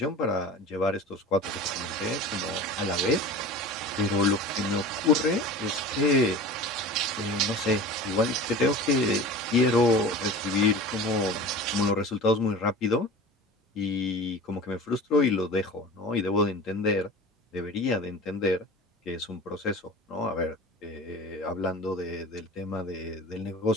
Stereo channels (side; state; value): both; normal; correlation 0.36